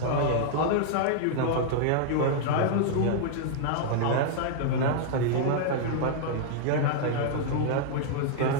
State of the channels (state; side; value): different; both; correlation -0.01